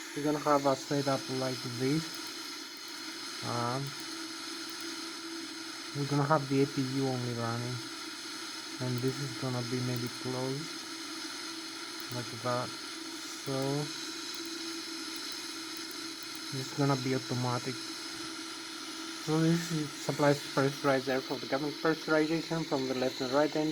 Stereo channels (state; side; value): identical; both; correlation 1.00